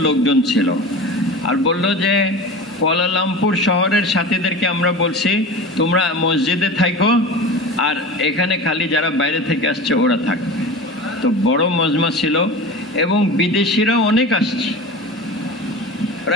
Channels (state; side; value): normal; both; correlation 0.31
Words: লোকজন ছিল। আর বলল যে কুয়ালালামপুর শহরের সাথীদেরকে আমরা বলছি তোমরা মসজিদে থাকো, আর এখানে খালি যারা বাইরে থেকে আসছে ওরা থাকবে। তো বড় মজমা ছিল, এবং বিদেশিরাও অনেক আসছে,